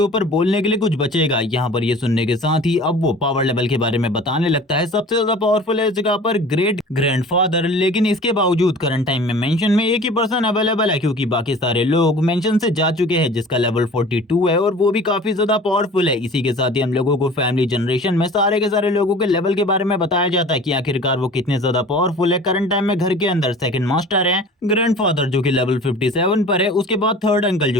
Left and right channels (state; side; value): normal; both; correlation 0.43